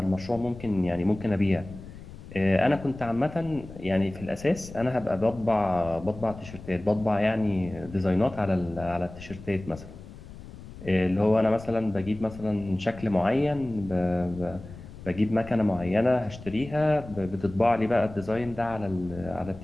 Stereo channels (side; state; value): left; noise; rumble, 15 dB below the sound